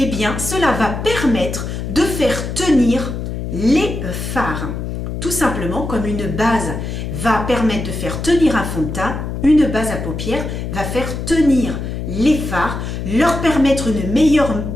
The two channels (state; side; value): noise; left; hum, 5 dB below the sound